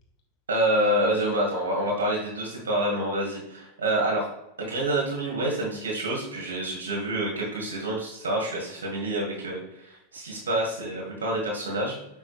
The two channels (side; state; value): both; normal; correlation -0.01